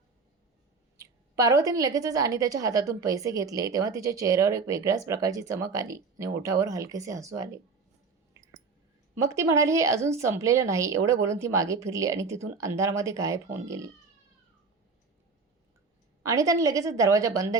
पार्वतीने लगेचच अनिताच्या हातातून पैसे घेतले तेव्हा तिच्या चेहऱ्यावर एक वेगळ्याच प्रकारची चमक आली आणि ओठावर हलकेसे हसू आले. मग ती म्हणाली, हे अजून संपलेलं नाही. एवढं बोलून ती मागे फिरली आणि तिथून अंधारामध्ये गायब होऊन गेली. अनिताने लगेचच दरवाजा बंद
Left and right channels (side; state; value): left; quieter; 4.6 dB